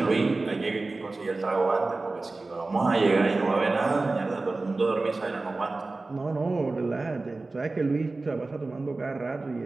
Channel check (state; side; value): quieter; left; 3.4 dB